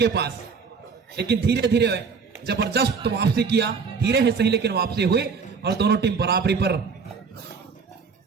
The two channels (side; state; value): left; quieter; 5.4 dB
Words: पास, लेकिन धीरे धीरे जबरदस्त वापसी किया। धीरे ही सही लेकिन वापसी हुई और दोनों टीम बराबरी पर